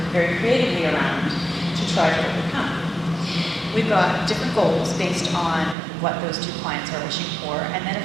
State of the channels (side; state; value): left; drops out; at 5.8 s